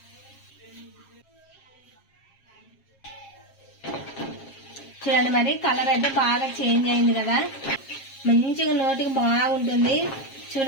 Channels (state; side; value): late; right; 7.4 ms